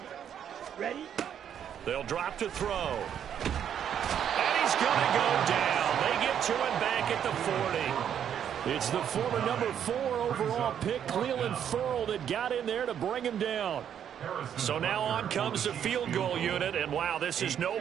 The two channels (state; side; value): quieter; left; 9.1 dB